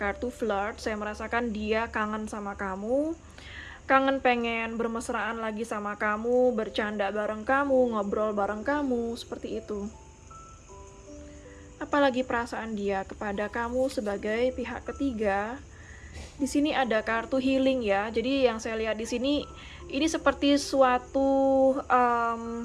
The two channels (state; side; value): identical; both; correlation 1.00